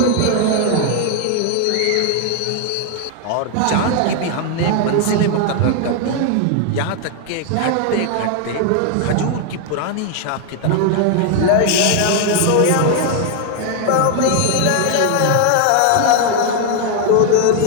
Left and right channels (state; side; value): different; both; correlation 0.00